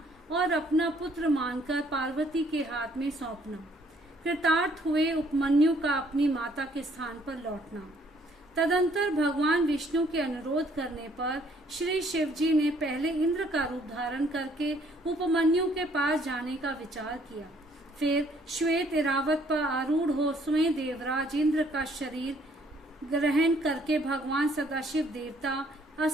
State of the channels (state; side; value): normal; both; correlation 0.63